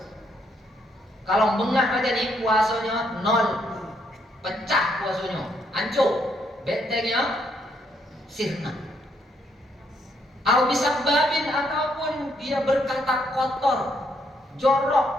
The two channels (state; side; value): normal; both; correlation 0.73